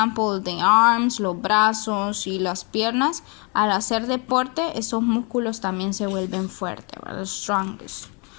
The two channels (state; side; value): quieter; right; 32.8 dB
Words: the arms, los brazos y las piernas. Al hacer deporte, esos músculos también se vuelven fuertes, ¿verdad? Strongest.